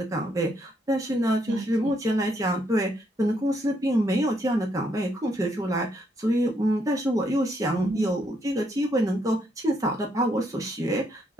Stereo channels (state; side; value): normal; both; correlation 0.74